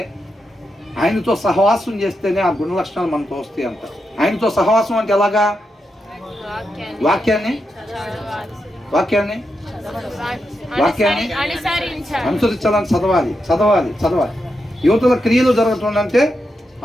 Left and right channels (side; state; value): both; normal; correlation 0.86